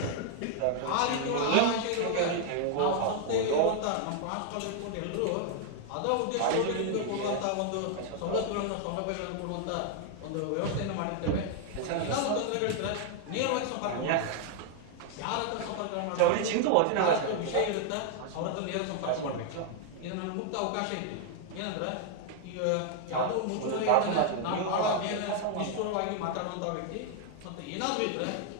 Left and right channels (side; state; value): both; different; correlation 0.00